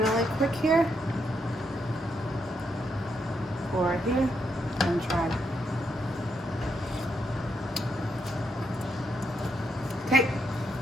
quick here. Pour it here and try it. Okay,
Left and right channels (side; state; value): both; normal; correlation 0.79